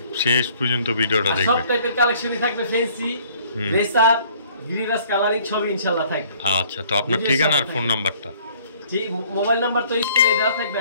শেষ পর্যন্ত ভিডিওটা দেখবেন সব টাইপের কালেকশনই থাকবে ফ্যান্সি রেসার গিরিবাস কালারিং সবই ইনশাআল্লাহ থাকবে আচ্ছা তো আপনার ঠিকানা আর ফোন নাম্বারটা জি মোবাইল নাম্বার তো স্ক্রিনে দেওয়া থাকবে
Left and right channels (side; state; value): both; inverted; correlation -0.58